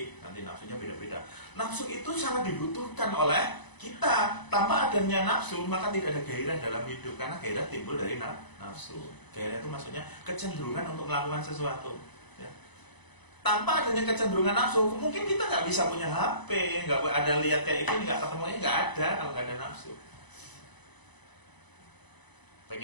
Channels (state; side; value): late; right; 1.0 ms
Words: nanti nafsunya beda-beda. Nafsu itu sangat dibutuhkan oleh kita. Tanpa adanya nafsu maka tidak ada gairah dalam hidup karena gairah timbul dari nafsu. Gairah itu maksudnya kecenderungan untuk melakukan sesuatu. Ya. Tanpa adanya kecenderungan nafsu, mungkin kita nggak bisa punya HP, nggak ada lihat kayak ini, nggak ketemunya nggak ada kalau nggak ada nafsu.